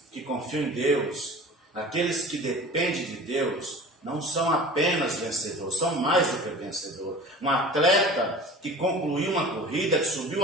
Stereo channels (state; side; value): normal; both; correlation 0.40